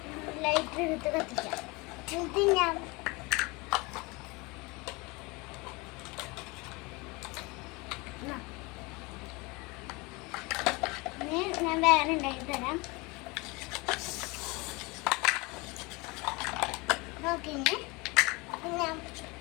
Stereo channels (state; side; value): quieter; right; 25.8 dB